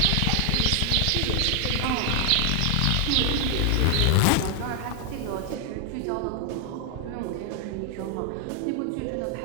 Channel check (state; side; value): different; both; correlation 0.00